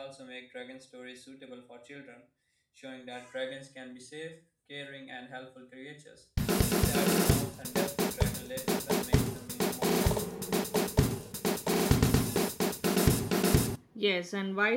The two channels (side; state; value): both; identical; correlation 1.00